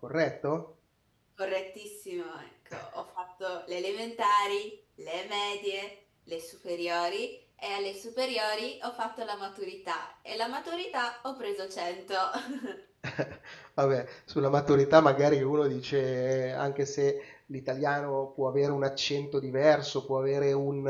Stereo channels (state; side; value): identical; both; correlation 1.00